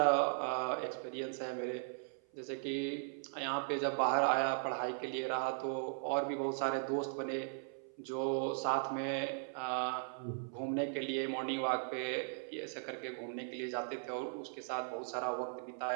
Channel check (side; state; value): left; silent; 52 dB below the other